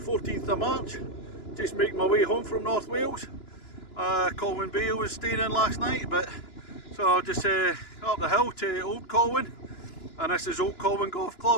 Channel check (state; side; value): late; right; 2.9 ms